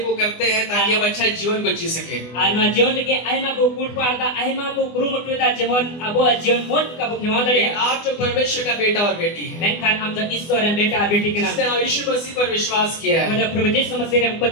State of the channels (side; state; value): right; late; 24 ms